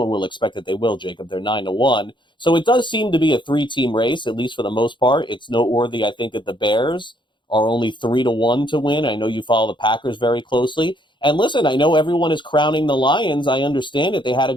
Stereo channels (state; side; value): late; right; 0.23 ms